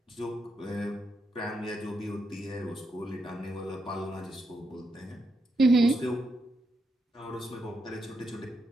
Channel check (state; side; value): normal; both; correlation 0.82